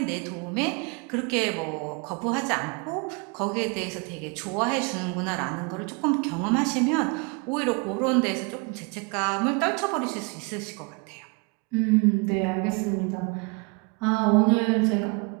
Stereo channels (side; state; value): left; quieter; 31.3 dB